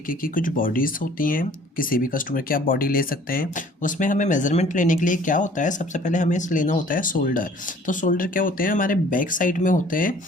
की कुछ बॉडीज़ होती हैं। किसी भी कस्टमर की आप बॉडी ले सकते हैं। उसमें हमें मेज़रमेंट लेने के लिए क्या होता है, सबसे पहले हमें लेना होता है शोल्डर। तो शोल्डर क्या होते हैं, हमारे बैक साइड में होते हैं।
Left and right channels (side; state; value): both; normal; correlation 0.53